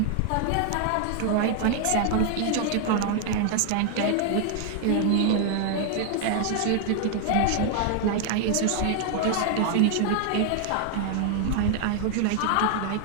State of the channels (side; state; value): both; different; correlation 0.00